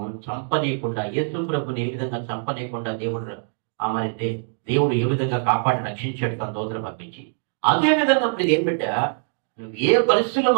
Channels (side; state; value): left; silent; digital silence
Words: చంపనీయకుండా, యేసు ప్రభుని ఏ విధంగా చంపనీయకుండా దేవుడు ఏ విధంగా కాపాడి రక్షించాడు తన దూతను పంపించి, అదే విధంగా ఇప్పుడు ఏం పెట్టా నువ్వు ఏ పరిస్థితుల